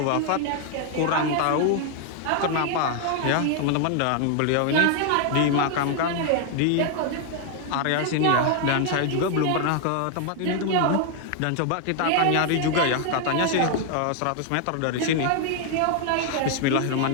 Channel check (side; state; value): both; different; correlation 0.00